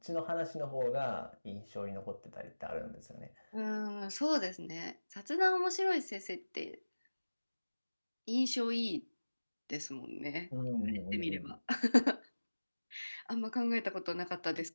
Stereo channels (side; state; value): both; inverted; correlation -1.00